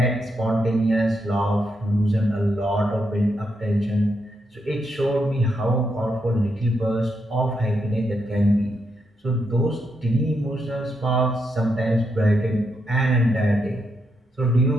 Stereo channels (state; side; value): normal; both; correlation 0.81